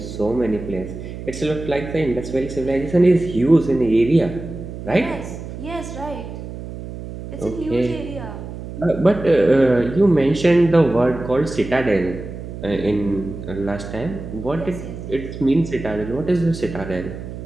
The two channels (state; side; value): noise; right; hum, 10 dB below the sound